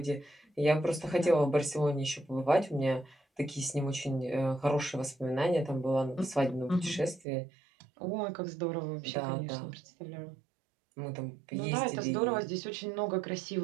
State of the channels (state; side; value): drops out; left; at 7.2 s